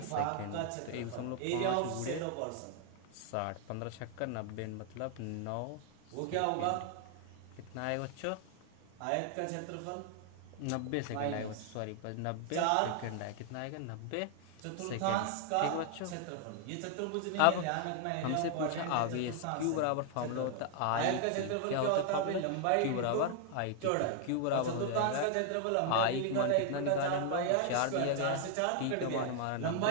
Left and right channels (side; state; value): both; different; correlation 0.00